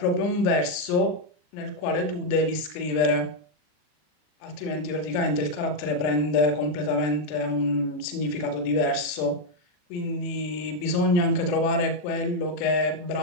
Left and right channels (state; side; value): late; right; 40 ms